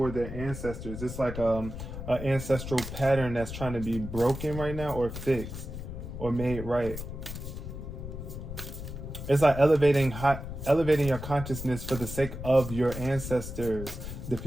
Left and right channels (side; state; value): left; noise; rumble, 8 dB below the sound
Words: their ancestors. It's like an ancestral pattern that's trying to be broken right now or fixed or made right. It's like elevating your consciousness for the sake of your ancestors, the